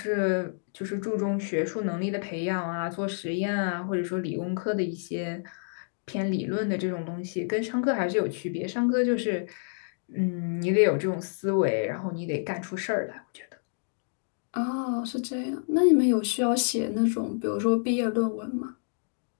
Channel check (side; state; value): right; silent; digital silence